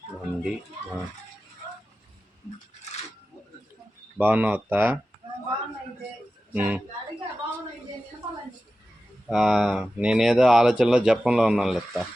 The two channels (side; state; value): both; normal; correlation 0.94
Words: ఉంది. బాగున్నావు అత్త? నేనేదో ఆలోచనలో జపంలో ఉన్నాను లెత్త.